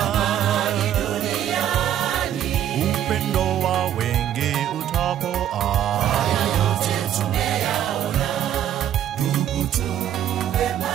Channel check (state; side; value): quieter; left; 10.8 dB